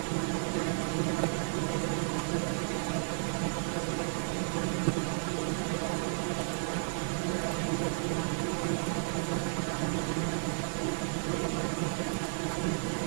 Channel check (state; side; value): silent; left; digital silence